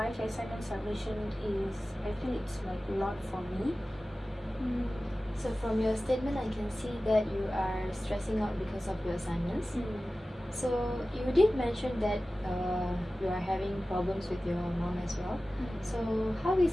assignment submission is, I feel it's like a lot for me. So from your statement, I can see that you are stressing out because of your assignments. So you did mention that you are having problems with your mom as well. So how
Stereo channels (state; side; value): normal; both; correlation 0.96